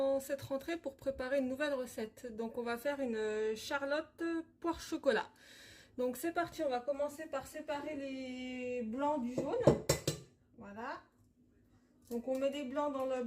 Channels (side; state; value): both; identical; correlation 1.00